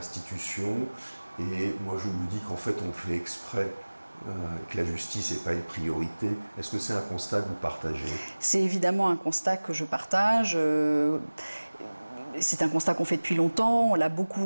Et moi je me dis qu'en fait on fait exprès que la justice n'est pas une priorité. Est-ce que c'est un constat que vous partagez? C'est évidemment un constat que je partage. C'est un constat qu'on fait depuis longtemps, on l'a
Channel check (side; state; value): both; inverted; correlation -1.00